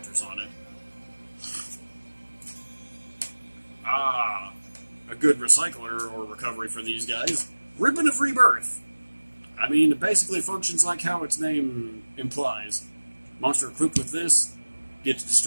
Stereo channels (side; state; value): both; inverted; correlation -1.00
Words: on it. Ah, a good recycler or recovery for these guys. Ribbon of Rebirth. I mean, it basically functions like how its name implies. Monster equipped with this gets